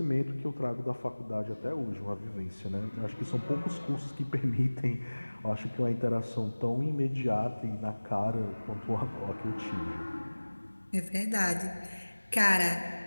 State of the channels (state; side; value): inverted; both; correlation -1.00